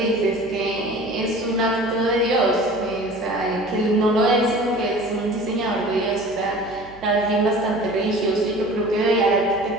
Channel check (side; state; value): right; noise; hum, 23 dB below the sound